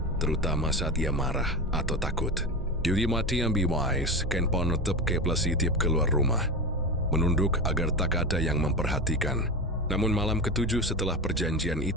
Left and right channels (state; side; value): normal; both; correlation 0.22